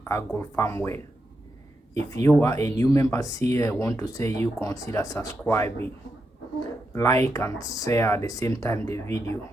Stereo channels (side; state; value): both; normal; correlation 0.85